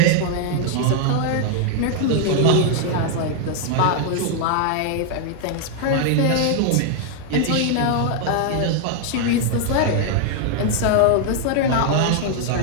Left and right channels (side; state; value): both; different; correlation 0.00